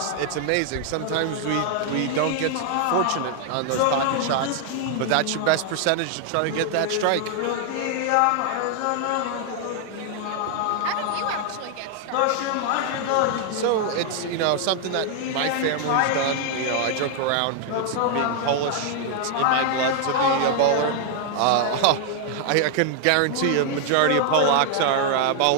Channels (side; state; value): both; different; correlation 0.00